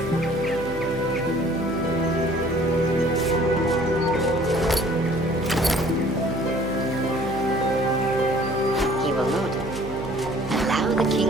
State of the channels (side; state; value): right; noise; hum, 9 dB below the sound